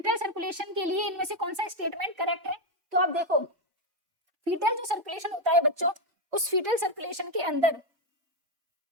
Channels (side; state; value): left; late; 3.1 ms